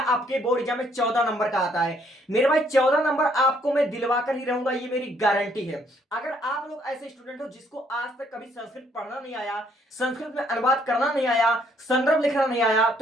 आपके बोर्ड एग्जाम में 14 नंबर का आता है। मेरे भाई 14 नंबर आपको मैं दिलवा कर ही रहूंगा, ये मेरी गारंटी है। अगर आप लोग ऐसे स्टूडेंट हो जिसको आज तक कभी संस्कृत पढ़ना नहीं आया, संस्कृत में अनुवाद करना नहीं आया, संदर्भ लिखना नहीं आया,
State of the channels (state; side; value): normal; both; correlation 0.67